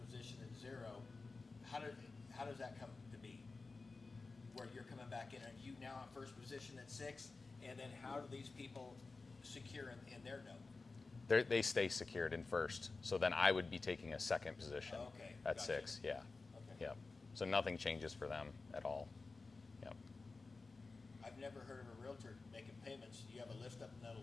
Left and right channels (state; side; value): quieter; right; 3.9 dB